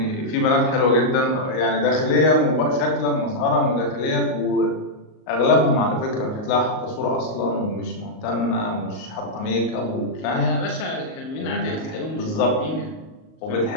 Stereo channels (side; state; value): right; late; 38 ms